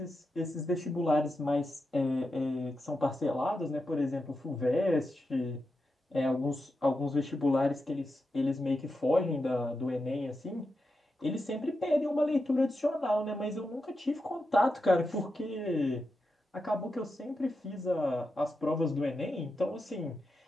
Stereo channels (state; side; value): normal; both; correlation 0.88